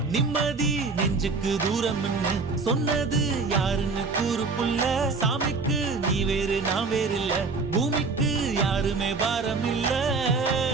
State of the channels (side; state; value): left; quieter; 4.3 dB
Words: நிம்மதி நெஞ்சுக்கு தூரம்னு சொன்னது யாருன்னு கூறு புள்ள சாமிக்கு நீ வேறு நான் வேறு இல்ல பூமிக்கு யாருமே பாரம் இல்ல